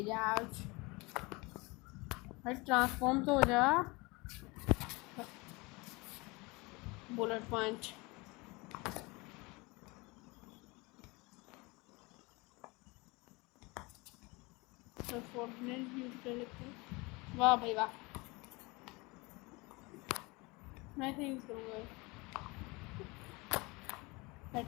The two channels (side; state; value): right; quieter; 25.5 dB